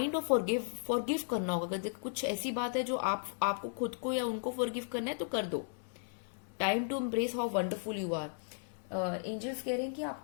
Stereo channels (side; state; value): right; silent; 54 dB below the other